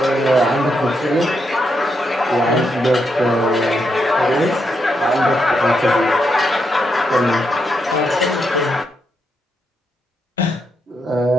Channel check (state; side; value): normal; both; correlation 0.81